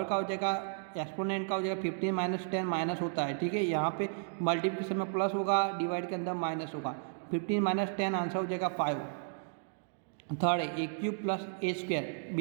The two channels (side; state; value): left; silent; digital silence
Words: का हो जाएगा, एक्सपोनेंट का हो जाएगा 15 - 10 माइनस होता है, ठीक है। यहाँ पे मल्टीप्लिकेशन में प्लस होगा, डिवाइड के अंदर माइनस होगा। 15 - 10 आंसर हो जाएगा 5। थर्ड है a³ + a²,